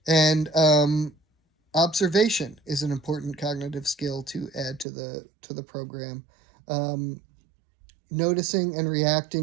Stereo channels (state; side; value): drops out; left; at 4.9 s